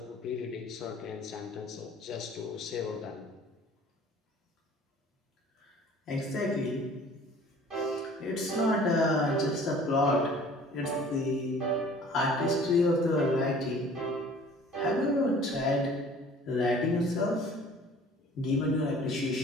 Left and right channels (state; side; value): normal; both; correlation 0.50